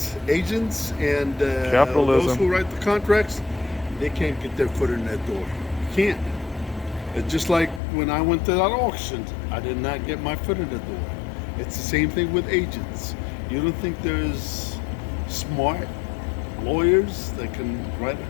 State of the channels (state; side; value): drops out; right; at 7.8 s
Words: and capitalism, those who write the contracts, they can't get their foot in that door. Can't. It's just like when I went to that auction, I did not get my foot in the door. It's the same thing with agents. You don't think there's smart lawyers that can write